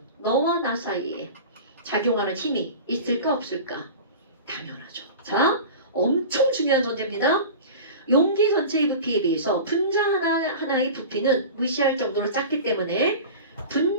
너와 나 사이에 작용하는 힘이 있을까 없을까? 당연하죠. 자, 엄청 중요한 전제입니다. 용기 전체의 부피에 비해서 분자 하나하나의 부피는 무시할 정도로 작기 때문에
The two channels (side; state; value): both; inverted; correlation -0.33